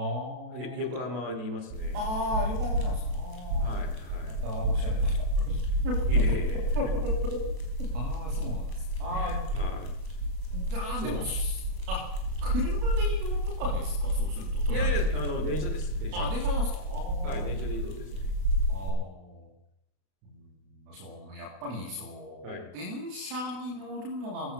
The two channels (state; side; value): late; left; 32 ms